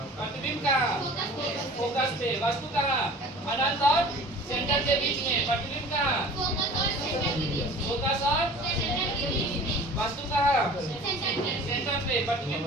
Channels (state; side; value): normal; both; correlation 0.43